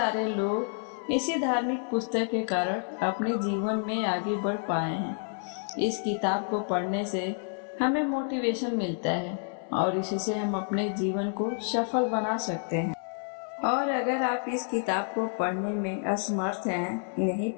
लोग इसी धार्मिक पुस्तक के कारण अपने जीवन में आगे बढ़ पाए हैं। इस किताब को पढ़ने से हमें मोटिवेशन मिलता है और इसी से हम अपने जीवन को सफल बना सकते हैं। और अगर आप इस किताब को पढ़ने में असमर्थ हैं, नहीं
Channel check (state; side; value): silent; right; 58 dB below the other